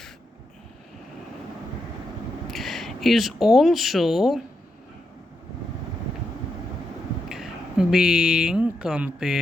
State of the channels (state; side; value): normal; both; correlation 0.83